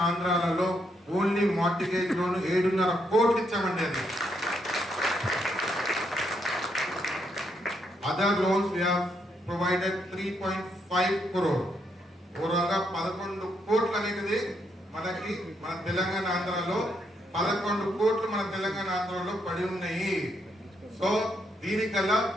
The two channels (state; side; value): normal; both; correlation 0.77